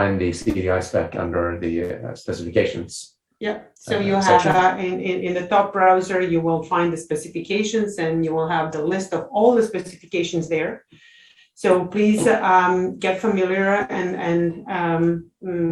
the CDI spec under the specifications. Yeah, so you have in the top browser, you will find the specifications, and you will have the list of all the specifications there. So please get familiar and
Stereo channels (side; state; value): both; identical; correlation 1.00